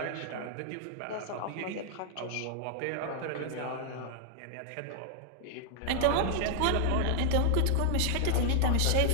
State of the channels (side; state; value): both; different; correlation 0.00